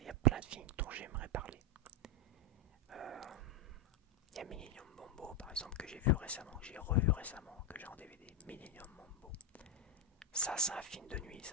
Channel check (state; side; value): normal; both; correlation 0.04